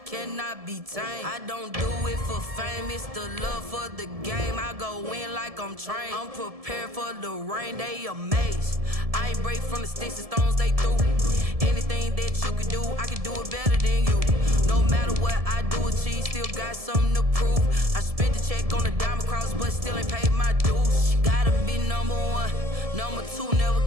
cannot be tamed. I don't do it for fame, it's the love for the game. I go in like I'm trained. I'm prepared for the rain, they amazed. I ain't break from the sticks and stones they threw. Anything that you can do, I can do it better than you. No matter what I do, achieve, still got something to prove. I spent the check on the diamond cross, but still ain't paid my dues. Gotta be number one, number two never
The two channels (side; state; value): left; late; 1.7 ms